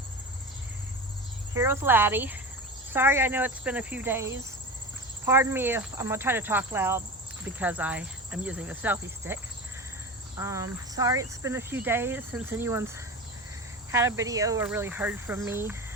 Here with Laddie. Sorry, I know it's been a few days. Pardon me if I'm gonna try to talk loud because I am using the selfie stick. Sorry it's been a few days since anyone's had a video or really heard from me.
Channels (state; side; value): normal; both; correlation 0.28